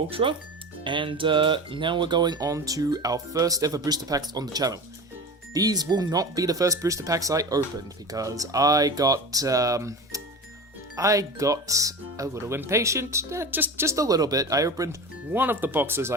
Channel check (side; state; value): both; normal; correlation 0.30